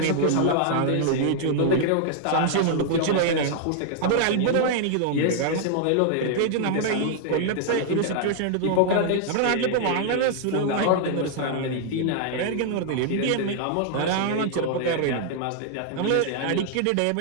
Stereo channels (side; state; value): both; different; correlation 0.00